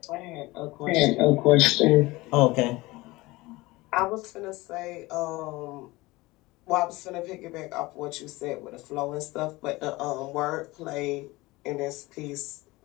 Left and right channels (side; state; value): right; quieter; 21.0 dB